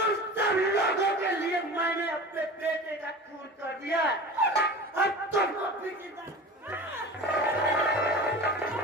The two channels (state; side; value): normal; both; correlation 0.35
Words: सब लोगों के लिए मैंने अपने बेटे का खून कर दिया। अब तुमको भी